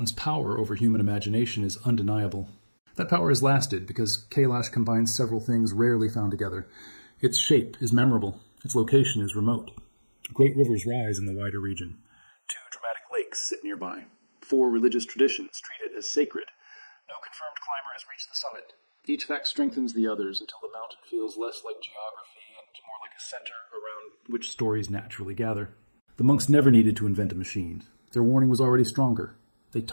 power over human imagination is undeniable. That power has lasted because Kailash combines several things rarely found together. Its shape is memorable. Its location is remote. Great rivers rise in the wider region. 2 dramatic lakes sit nearby. 4 religious traditions treat it as sacred. No confirmed climber has reached the summit. Each fact strengthens the others until the mountain feels less like geography and more like a center around which stories naturally gather. The monks never needed to invent a machine. Their warning was already stronger. They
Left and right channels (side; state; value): both; inverted; correlation -1.00